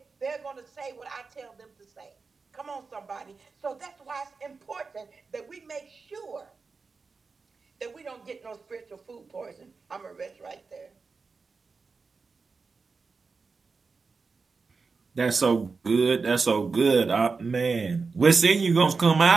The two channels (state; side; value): quieter; left; 4.5 dB